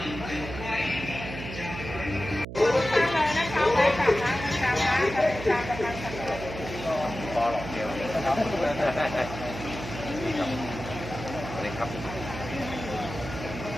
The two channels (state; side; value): noise; right; hum, 9 dB below the sound